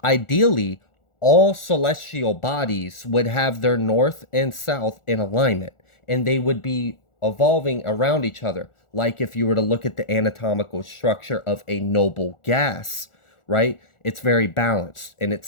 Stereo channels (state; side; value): late; right; 1.4 ms